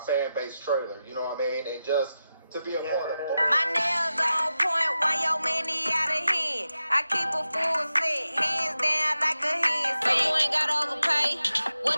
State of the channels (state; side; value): inverted; both; correlation -0.91